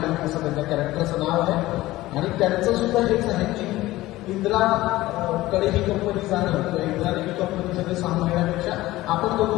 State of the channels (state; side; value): quieter; right; 17.3 dB